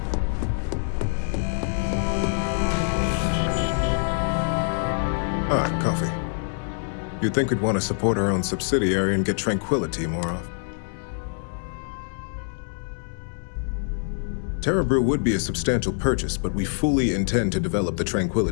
Ah, coffee. You'd think we'd want to support our own subsidiary and get tranquility more often. Terra Brew would be a substantial purchase, but we fully intend to develop the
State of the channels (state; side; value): silent; right; 62 dB below the other